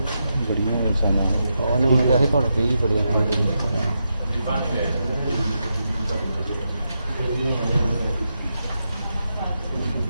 ਬੜੀਆਂ ਇਨਸਾਨਾਂ ਉਹਨੇ ਮੈਨੂੰ ਕਿਹਾ ਸੀ ਤੁਹਾਨੂੰ 20 ਬੜੀਆਂ ਰਹਿਣਗੇ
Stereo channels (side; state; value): both; inverted; correlation -0.85